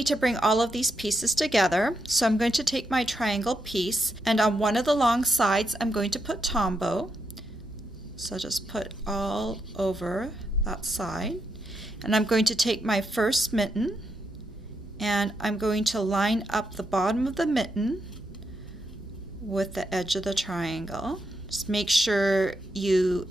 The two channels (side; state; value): both; normal; correlation 0.82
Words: to bring all of these pieces together. So I'm going to take my triangle piece, and on one of the long sides I'm going to put Tombow. So just put all over that side. And I'm going to take my first mitten, and I'm going to line up the bottom of the mitten with the edge of the triangle. Just make sure you